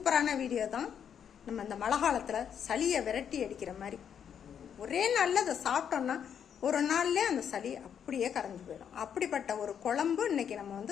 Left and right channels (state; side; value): quieter; right; 8.3 dB